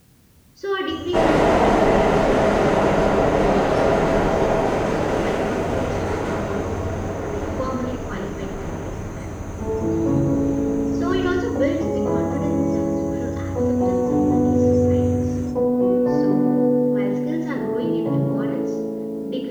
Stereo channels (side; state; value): both; identical; correlation 1.00